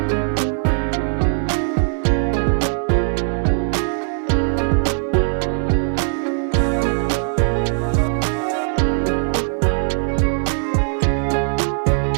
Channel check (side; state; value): left; silent; 61 dB below the other